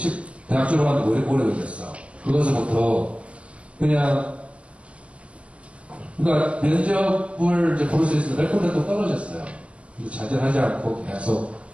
대학 졸업하는데 왜 이렇게 오래 걸렸어. 그것부터, 그러니까 면접을 이제 볼 수 있어서 몇 군데 또 떨어졌어요. 근데 좌절하지 않고 계속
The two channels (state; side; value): late; left; 0.060 ms